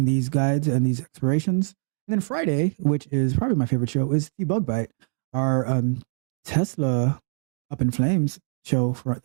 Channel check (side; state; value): left; silent; digital silence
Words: these guides and these explorations. And then Friday, which is probably my favorite show, is the Bug Bite, our Tesla Up in Flames show